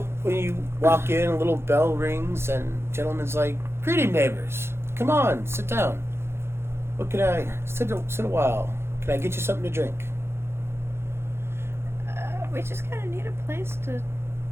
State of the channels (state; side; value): late; left; 0.12 ms